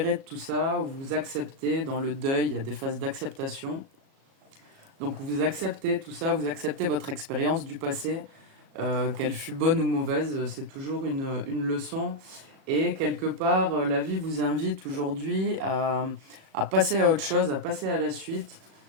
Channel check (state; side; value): late; left; 37 ms